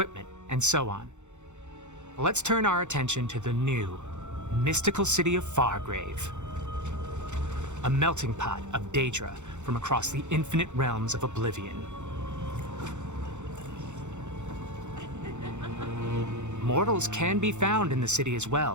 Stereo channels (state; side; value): late; left; 0.84 ms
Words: and so on. Let's turn our attention to the new, mystical city of Fargrave. A melting pot of Daedra from across the infinite realms of Oblivion. Mortals can be found in the city as